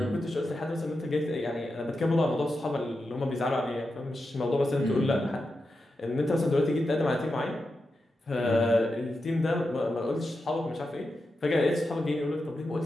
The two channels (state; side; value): normal; both; correlation 0.89